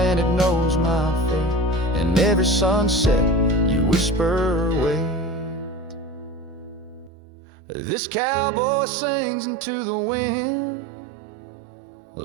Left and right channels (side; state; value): left; drops out; at 7.1 s